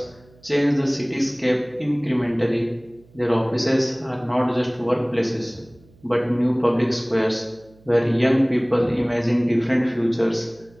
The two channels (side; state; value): right; noise; hum, 28 dB below the sound